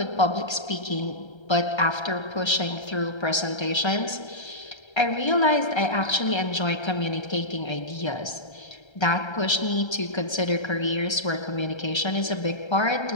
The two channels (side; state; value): right; late; 1.3 ms